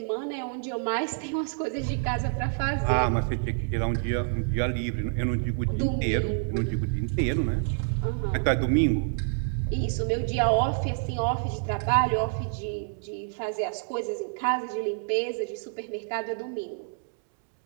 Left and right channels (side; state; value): left; silent; digital silence